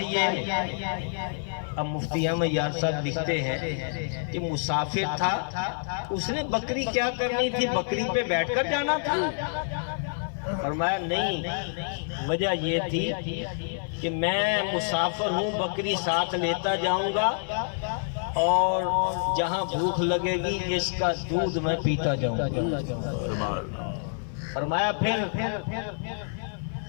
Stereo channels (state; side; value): silent; right; 60 dB below the other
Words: اب مفتی احمد یار صاحب لکھتے ہیں کہ مسافر تھا، اس نے بکری کیا کرنی تھی؟ بکری پہ بیٹھ کر جانا تھا؟ فرمایا نہیں، وجہ یہ تھی کہ میں مسافر ہوں، بکری ساتھ لیتا جاؤں گا اور جہاں بھوک لگے گی اس کا دودھ میں پیتا جاؤں گا۔ فرمایا پھر